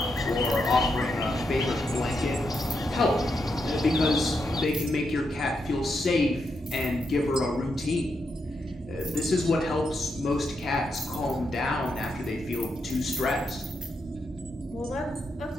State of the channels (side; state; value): both; normal; correlation 0.83